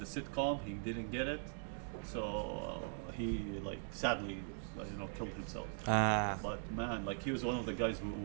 a sitcom, he didn't get it, so he like sadly killed himself. But man, like he was one of the guys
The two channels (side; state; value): left; silent; digital silence